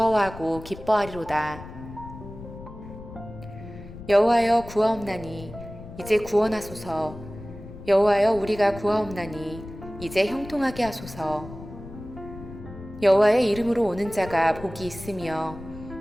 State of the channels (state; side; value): noise; left; rumble, 14 dB below the sound